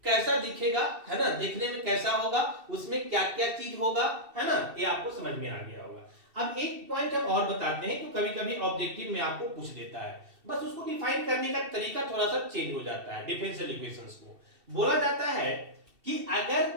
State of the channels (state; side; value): late; left; 2.7 ms